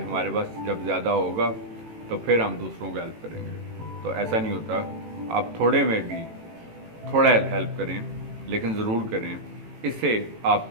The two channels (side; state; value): left; late; 18 ms